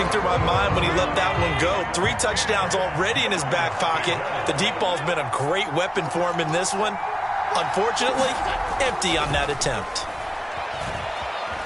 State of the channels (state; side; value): identical; both; correlation 1.00